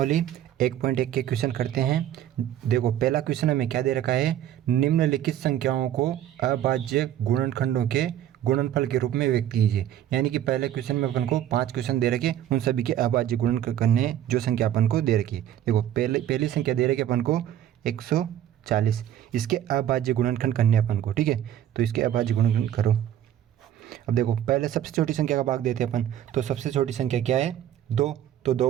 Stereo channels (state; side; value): quieter; left; 11.4 dB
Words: 1.1 के क्वेश्चन करते हैं। देखो पहला क्वेश्चन हमें क्या दे रखा है, निम्नलिखित संख्याओं को अभाज्य गुणनखंडों के गुणनफल के रूप में व्यक्त कीजिए। यानी कि पहले क्वेश्चन में अपन को 5 क्वेश्चन दे रखे, उन सभी के अभाज्य गुणन करने जो संख्या अपन को दे रखी है। देखो पहली संख्या दे रखी अपन को 140, इसके अभाज्य गुणनखंड करने अपन को। ठीक है, तो इसके अभाज्य गुणनखंड करो। अब देखो पहले सबसे छोटी संख्या का भाग देते हैं अपन, तो सबसे छोटी संख्या क्या है, 2। तो